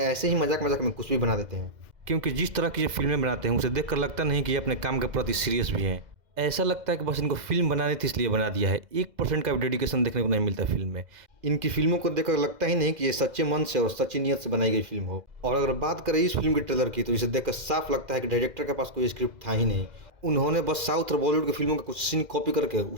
ऐसे ही मजाक मजाक में कुछ भी बना देते हैं। क्योंकि जिस तरह की ये फिल्में बनाते हैं उसे देखकर लगता नहीं कि ये अपने काम के प्रति सीरियस भी हैं। ऐसा लगता है कि बस इनको फिल्म बनानी थी इसलिए बना दिया है। 1% का भी डेडिकेशन देखने को नहीं मिलता फिल्म में। इनकी फिल्मों को देखकर लगता ही नहीं कि ये सच्चे मन से और सच्ची नीयत से बनाई गई फिल्म हो। और अगर बात करें इस फिल्म के ट्रेलर की तो इसे देखकर साफ लगता है कि डायरेक्टर के पास कोई स्क्रिप्ट था ही नहीं। उन्होंने बस साउथ और बॉलीवुड की फिल्मों का कुछ सीन कॉपी करके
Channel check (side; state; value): left; late; 2.0 ms